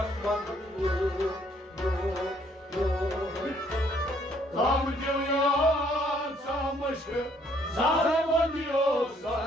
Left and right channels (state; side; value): normal; both; correlation 0.65